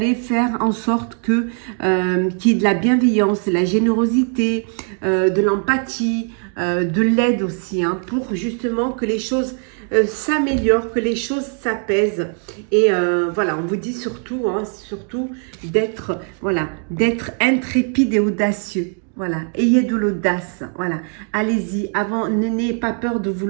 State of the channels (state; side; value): quieter; left; 39.3 dB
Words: faire en sorte qu'il y ait de la bienveillance, de la générosité, de l'empathie, de l'aide aussi, hein, pour justement que les choses s'améliorent, que les choses s'apaisent. Et voilà, on vous dit surtout, hein, d'être intrépide et audacieux. Voilà, ayez de l'audace, voilà, allez-y, n'ayez pas peur de vous